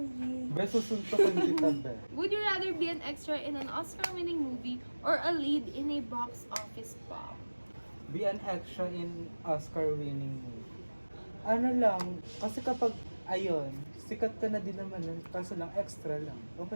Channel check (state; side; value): inverted; both; correlation -1.00